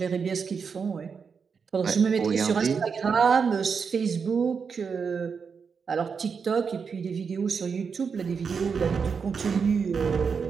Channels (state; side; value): quieter; left; 5.9 dB